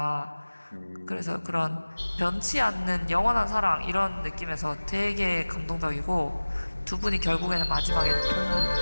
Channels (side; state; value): both; inverted; correlation -1.00